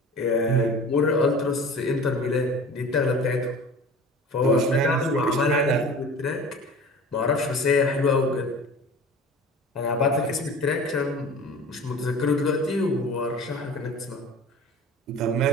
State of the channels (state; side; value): normal; both; correlation 0.39